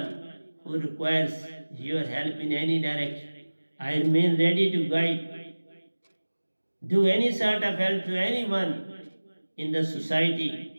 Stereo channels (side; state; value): both; inverted; correlation -1.00